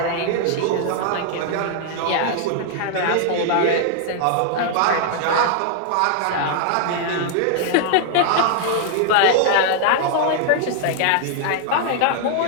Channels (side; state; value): both; different; correlation 0.00